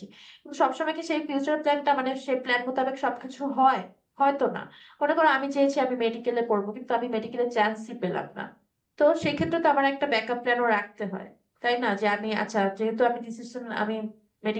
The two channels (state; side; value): identical; both; correlation 1.00